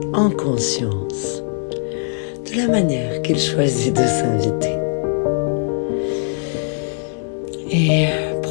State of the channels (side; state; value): right; silent; digital silence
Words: en conscience de la manière qu'il choisit de s'inviter. Et